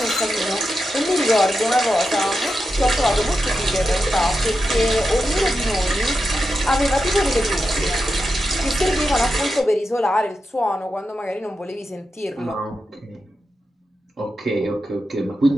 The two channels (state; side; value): normal; both; correlation 0.89